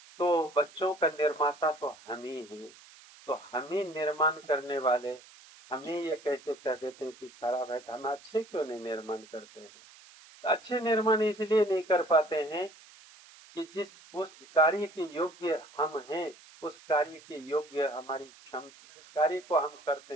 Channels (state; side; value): noise; right; hiss, 22 dB below the sound